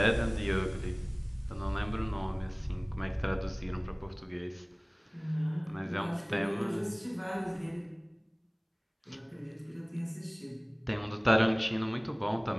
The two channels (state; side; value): identical; both; correlation 1.00